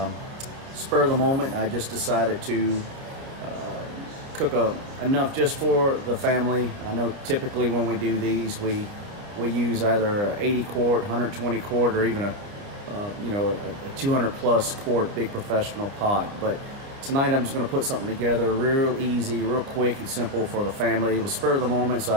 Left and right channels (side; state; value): left; late; 29 ms